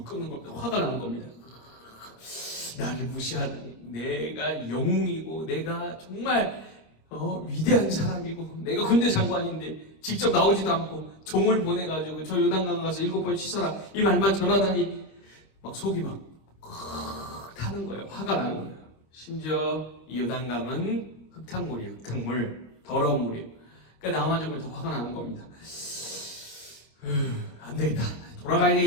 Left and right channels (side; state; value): right; late; 25 ms